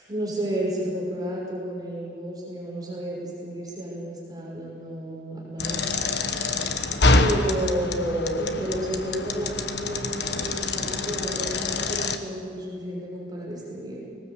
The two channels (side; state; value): both; normal; correlation 0.48